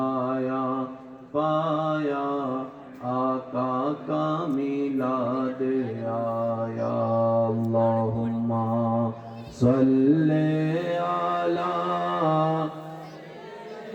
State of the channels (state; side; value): identical; both; correlation 1.00